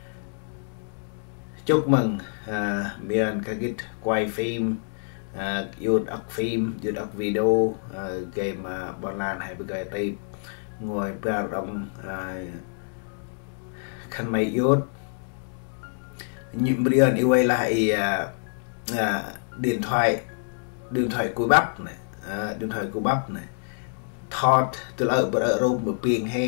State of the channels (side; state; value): right; silent; digital silence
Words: chúc mừng miền cái quay phim yun ốc phim yun ốc video game bọn lan hay bây giờ đây ngồi ba đồng khăn mày yun những brian yêu ấy lại điện thoại cùi bắp này điện thoại cùi bắp này thọt từ ở bờ rôm bờ piền